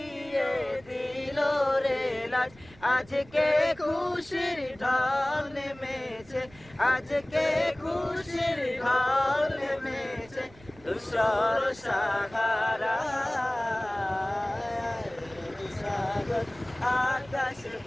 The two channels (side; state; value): right; noise; rumble, 24 dB below the sound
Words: দিল রে লাজ আজকে খুশির ঢল নেমেছে আজকে খুশির ঢল নেমেছে ধূসর সাহারা আকাশ